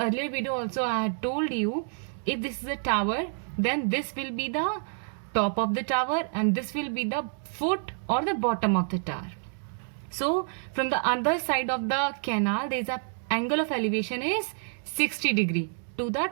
video also I had told you, if this is a tower, then this will be the top of the tower and this will be the foot or the bottom of the tower. So from the other side of the canal, there is a angle of elevation is 60 degree to the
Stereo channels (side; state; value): left; silent; 59 dB below the other